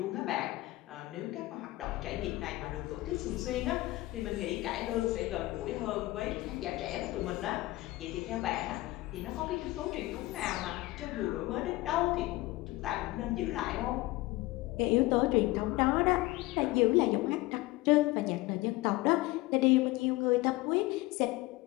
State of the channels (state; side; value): quieter; right; 19.3 dB